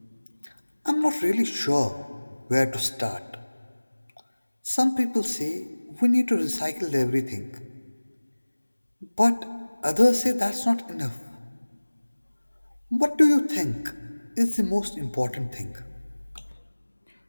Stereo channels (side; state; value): both; inverted; correlation -1.00